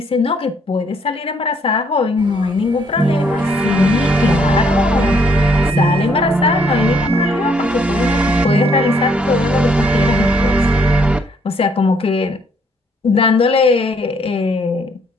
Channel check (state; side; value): normal; both; correlation 0.68